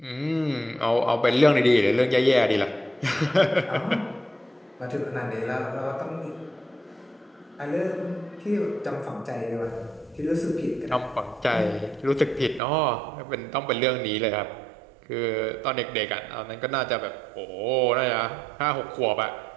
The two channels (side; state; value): left; drops out; at 12.6 s